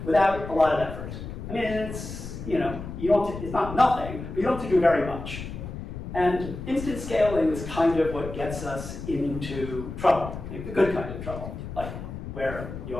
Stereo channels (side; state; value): left; noise; rumble, 9 dB below the sound